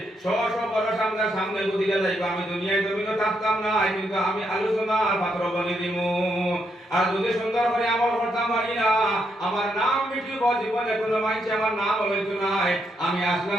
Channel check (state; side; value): normal; both; correlation 0.78